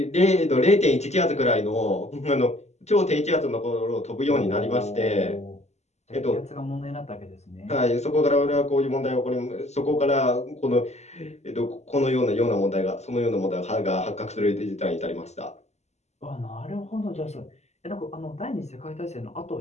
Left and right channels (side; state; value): right; late; 0.32 ms